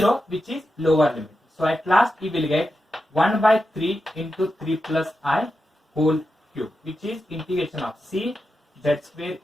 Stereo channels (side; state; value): both; normal; correlation 0.89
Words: which is lower limit. So at last we will get 1 by 3 into 3 plus I whole cube, which is integration of c z square